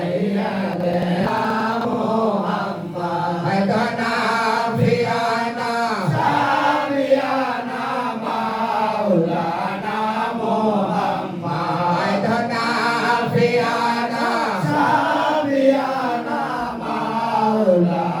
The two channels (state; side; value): identical; both; correlation 1.00